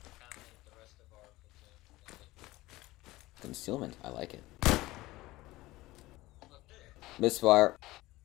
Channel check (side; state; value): right; quieter; 18.7 dB